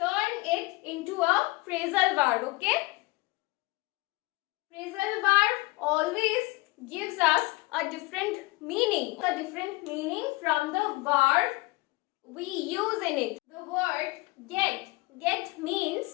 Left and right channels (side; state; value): right; quieter; 23.1 dB